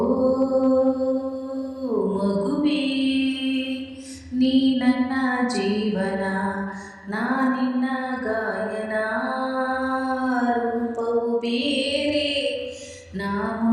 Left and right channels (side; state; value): both; identical; correlation 1.00